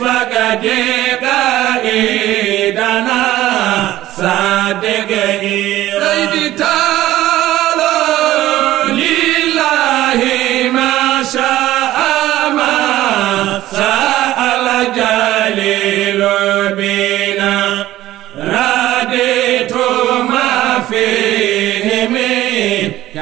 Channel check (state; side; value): quieter; left; 14.9 dB